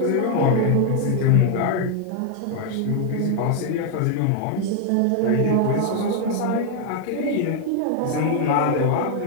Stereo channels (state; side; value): different; both; correlation 0.00